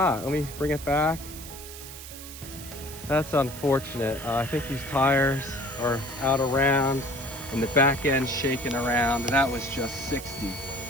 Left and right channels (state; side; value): noise; right; hiss, 13 dB below the sound